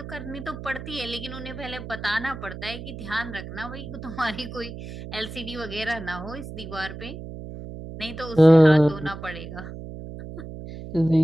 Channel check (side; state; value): right; noise; hum, 11 dB below the sound